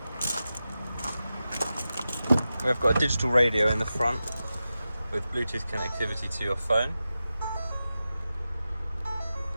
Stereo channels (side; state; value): both; inverted; correlation -0.92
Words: We've got a digital radio in the front with Bluetooth connectivity to your phone.